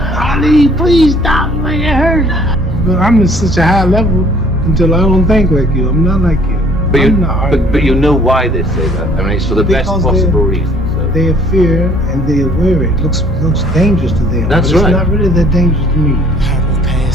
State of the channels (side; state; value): both; normal; correlation 0.58